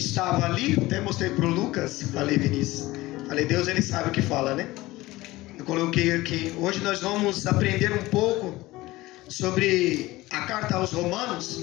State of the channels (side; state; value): right; quieter; 18.8 dB